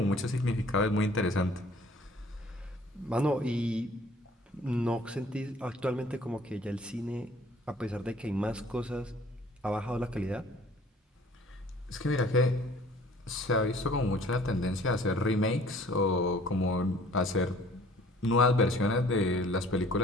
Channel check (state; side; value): normal; both; correlation 0.53